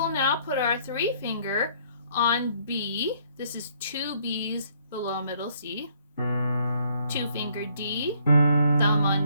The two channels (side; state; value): both; inverted; correlation -0.65